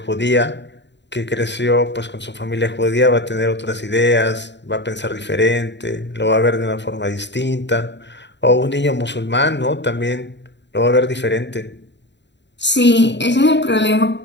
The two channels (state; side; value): late; right; 0.52 ms